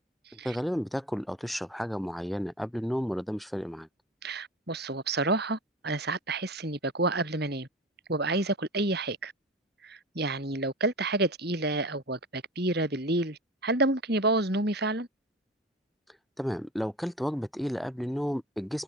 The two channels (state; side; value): normal; both; correlation 0.32